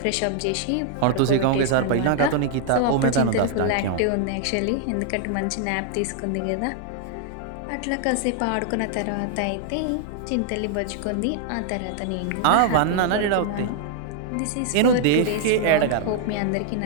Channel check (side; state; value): both; different; correlation 0.00